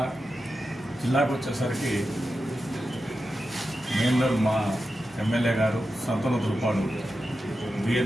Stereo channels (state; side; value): normal; both; correlation 0.90